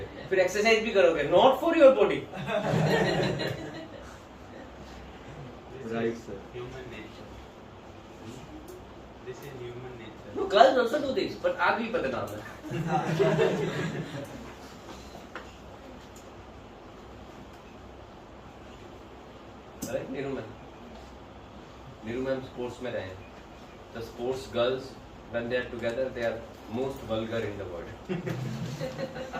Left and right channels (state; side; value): identical; both; correlation 1.00